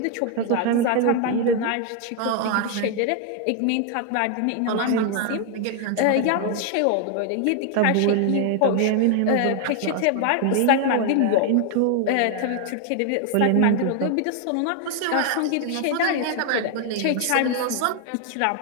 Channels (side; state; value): both; different; correlation 0.00